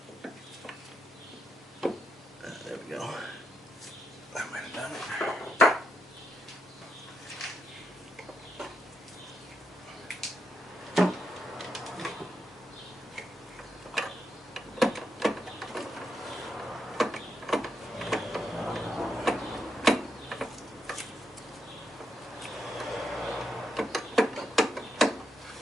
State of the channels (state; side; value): normal; both; correlation 0.82